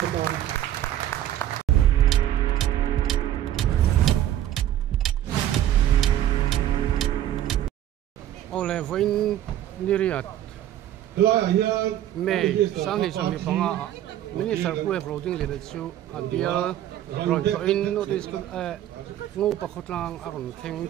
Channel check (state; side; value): quieter; left; 12.2 dB